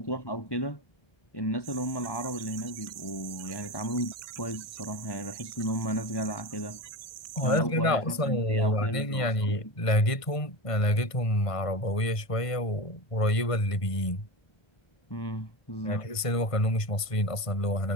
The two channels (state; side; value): late; right; 1.5 ms